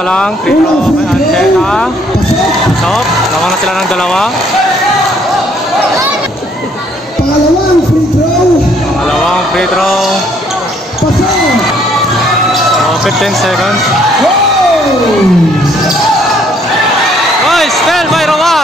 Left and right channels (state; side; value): normal; both; correlation 0.65